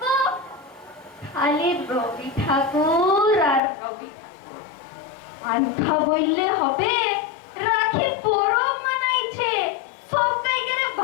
খালি রবি ঠাকুর আর রবি ঠাকুর। আনখা বললে হবে, রাখি পরব মানাইছে, সব কাইকে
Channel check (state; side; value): drops out; right; at 3.6 s